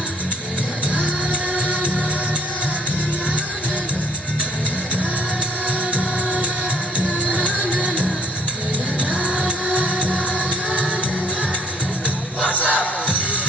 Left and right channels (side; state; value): both; normal; correlation 0.62